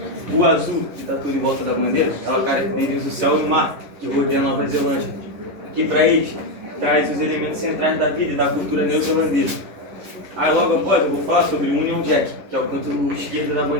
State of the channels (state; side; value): late; left; 11 ms